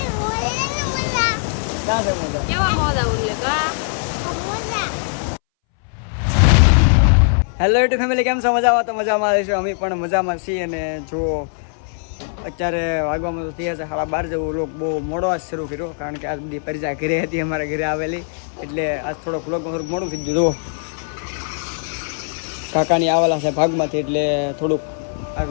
ક્યાં છે મોજા કેવા મોજા ઉલ્યો હેલો યુટ્યુબ ફેમિલી, કેમ છો? મજામાં? તો મજામાં આવીશું, અમે પણ મજામાં છીએ. અને જુઓ અત્યારે વાગવામાં તો થયા છે 12:30 જેવું. વ્લોગ બહુ મોડો આજ શરૂ કર્યો, કારણ કે આજ બધી પરિજા ઘરે હતી, અમારા ઘરે આવેલી, એટલે આજ થોડોક વ્લોગમાં થોડુંક મોડું થઈ ગયું. જુઓ કાકાની આવેલા છે ભાગમાંથી, એટલે થોડુંક આ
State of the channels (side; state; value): right; silent; 63 dB below the other